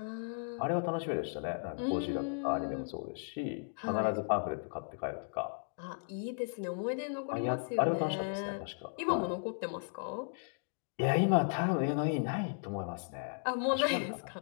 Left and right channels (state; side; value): silent; right; digital silence